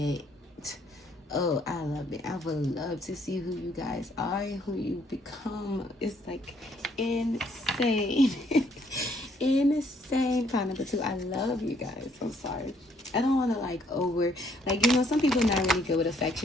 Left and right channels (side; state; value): both; normal; correlation 0.67